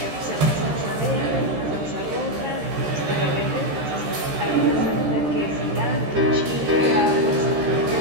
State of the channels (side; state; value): left; late; 13 ms